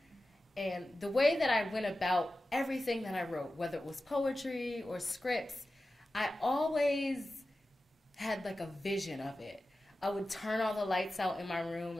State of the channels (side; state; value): both; normal; correlation 0.94